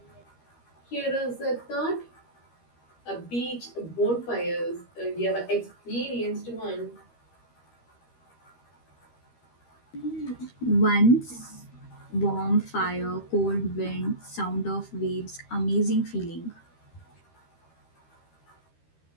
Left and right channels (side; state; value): right; late; 13 ms